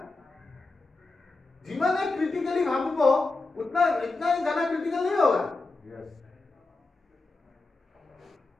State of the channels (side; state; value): right; quieter; 3.5 dB